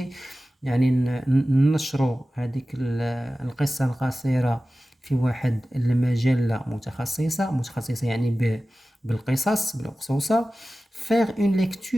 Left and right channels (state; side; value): normal; both; correlation 0.95